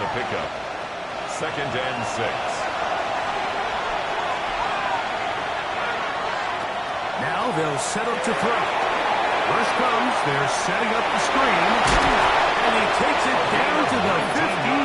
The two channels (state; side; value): identical; both; correlation 1.00